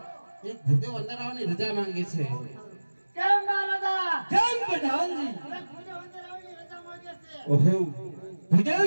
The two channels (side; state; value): both; inverted; correlation -1.00